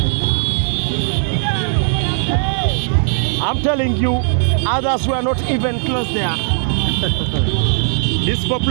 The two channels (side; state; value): left; silent; digital silence